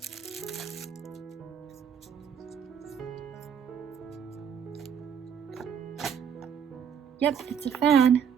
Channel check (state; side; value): quieter; left; 7.7 dB